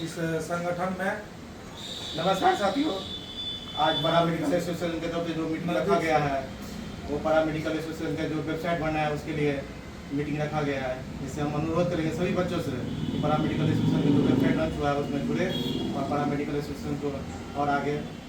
इस संगठन में। नमस्कार साथियों, आज पारा मेडिकल एसोसिएशन के तरफ से जो मीटिंग रखा गया है वो पारा मेडिकल एसोसिएशन का जो वेबसाइट बनना है उसके लिए मीटिंग रखा गया है, जिससे हम अनुरोध करेंगे सभी बच्चों से कि पारा मेडिकल एसोसिएशन का जो वेबसाइट लॉन्च हुआ है उसमें जुड़े और पारा मेडिकल एसोसिएशन को और आगे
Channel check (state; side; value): identical; both; correlation 1.00